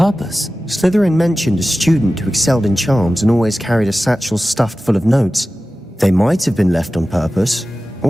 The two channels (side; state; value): both; normal; correlation 0.95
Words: Slytherin mentioned a student who excelled in charms and always carried a satchel stuffed full of notes. They might have been left on purpose,